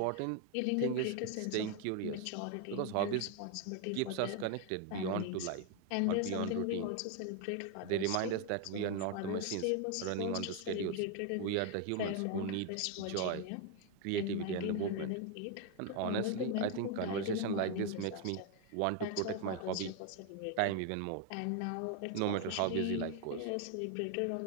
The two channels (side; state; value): both; different; correlation 0.01